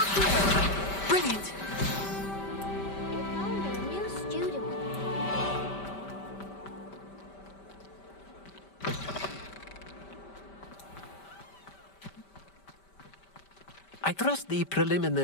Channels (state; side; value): late; right; 5.1 ms